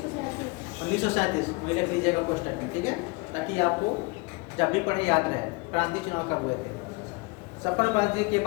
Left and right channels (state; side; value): quieter; right; 26.5 dB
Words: 1937 में लिख लीजिएगा पोस्टर में। ठीक है, ताकि आपको जब भी पढ़े याद रहे प्रांतीय चुनाव कब हुए थे। संपन्न